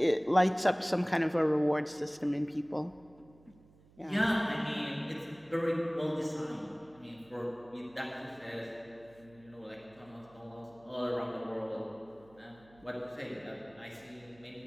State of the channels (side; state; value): right; noise; hum, 26 dB below the sound